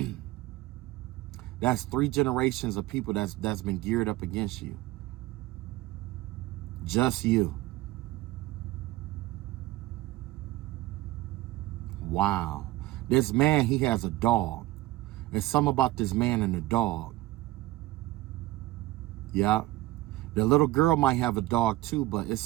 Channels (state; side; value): quieter; left; 17.7 dB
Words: That's 3 generations of people that's been geared up against you. Just you. Wow. This man, he has a dog. There's something about this man and the dog. Yeah. The little girl might have a dog too, but it's